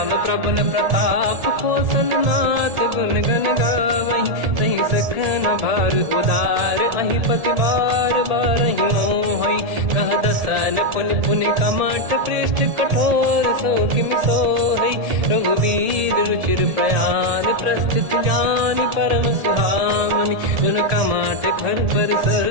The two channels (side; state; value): left; late; 1.7 ms